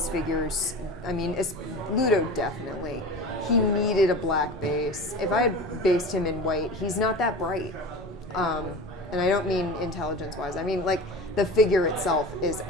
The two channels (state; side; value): normal; both; correlation 0.33